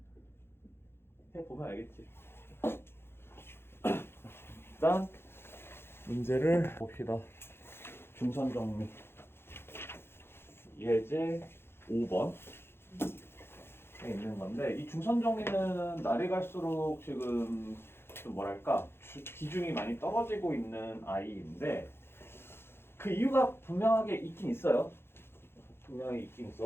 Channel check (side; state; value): right; late; 0.11 ms